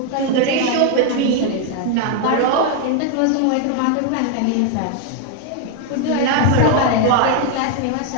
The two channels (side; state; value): both; different; correlation 0.00